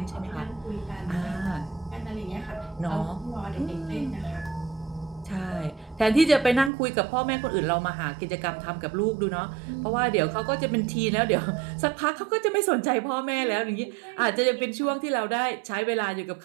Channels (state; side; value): drops out; left; at 6.7 s